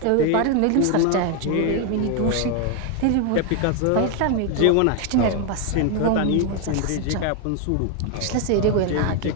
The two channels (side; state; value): both; different; correlation 0.01